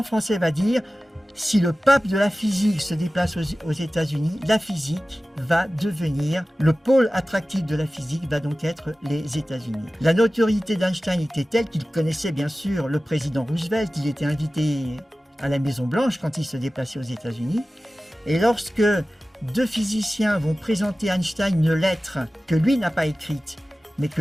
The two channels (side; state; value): both; normal; correlation 0.96